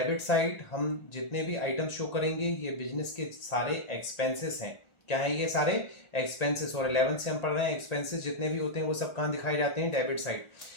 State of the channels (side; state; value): right; late; 1.4 ms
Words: साइड हम जितने भी आइटम शो करेंगे ये बिजनेस के सारे एक्सपेंसेस हैं। क्या है? ये सारे एक्सपेंसेस। और 11 से हम पढ़ रहे हैं, एक्सपेंसेस जितने भी होते हैं वो सब कहाँ दिखाए जाते हैं? Debit side.